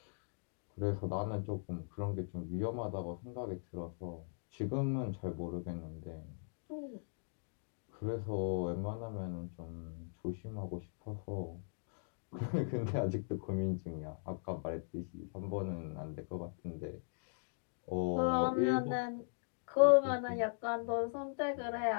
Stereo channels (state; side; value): silent; right; digital silence